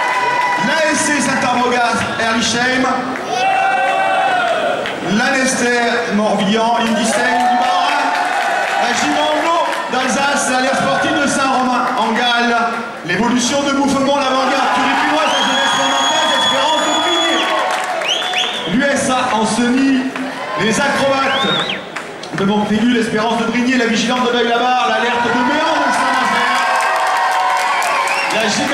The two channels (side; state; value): both; identical; correlation 1.00